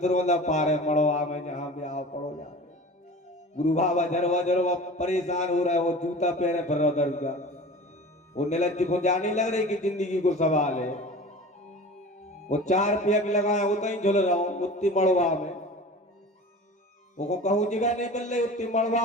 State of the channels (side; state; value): both; normal; correlation 0.38